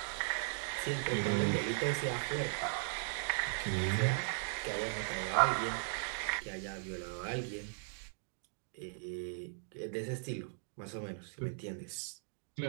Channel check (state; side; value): silent; left; digital silence